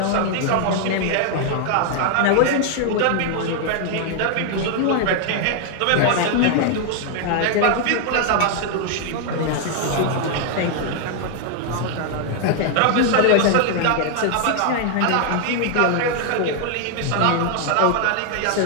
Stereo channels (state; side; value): different; both; correlation 0.00